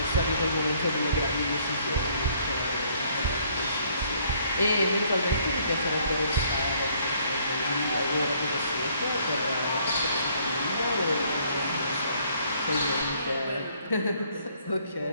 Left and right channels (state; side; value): inverted; both; correlation -0.64